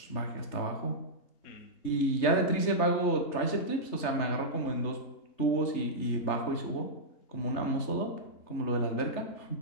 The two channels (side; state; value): right; late; 3.3 ms